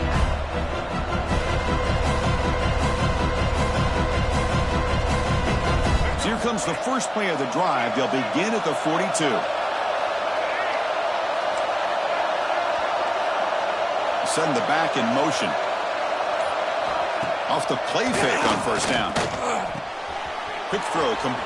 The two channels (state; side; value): identical; both; correlation 1.00